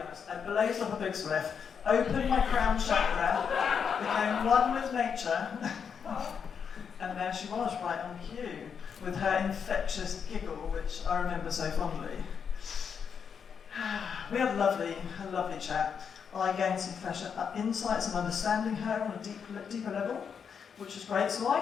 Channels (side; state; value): right; quieter; 6.8 dB